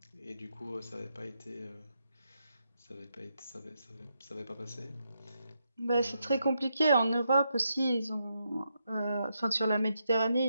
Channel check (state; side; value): inverted; both; correlation -0.82